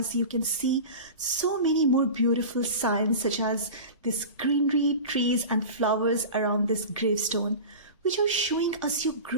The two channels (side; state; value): both; inverted; correlation -0.31